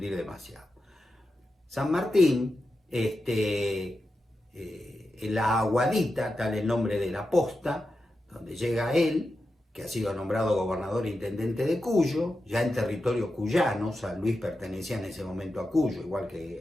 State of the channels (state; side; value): normal; both; correlation 0.90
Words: demasiado. San Martín, en la Aguadita, tal el nombre de la posta, donde llega él, que ha sido nombrado gobernador e intendente de Cuyo, ya en territorio cuyano. San Luis pertenecía en ese momento a Cuyo, igual